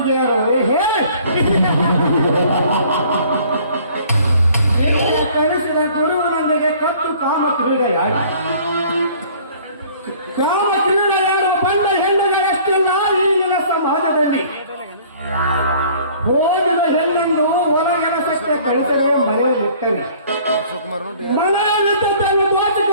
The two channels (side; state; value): both; inverted; correlation -0.53